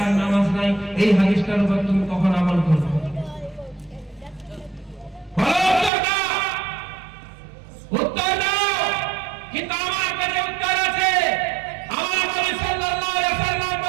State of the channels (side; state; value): left; drops out; at 5.9 s